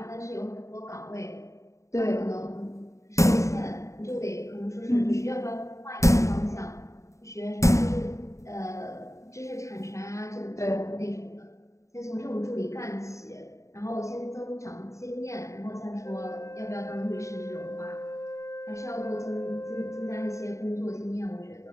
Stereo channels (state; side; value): late; right; 0.15 ms